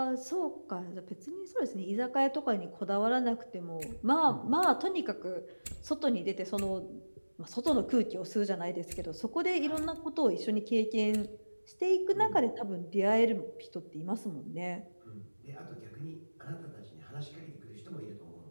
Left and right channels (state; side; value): inverted; both; correlation -1.00